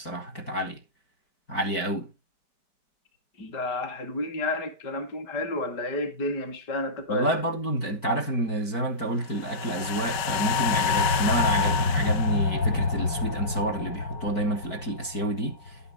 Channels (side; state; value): right; late; 5.2 ms